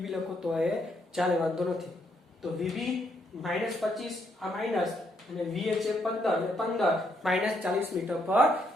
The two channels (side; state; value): both; normal; correlation 0.74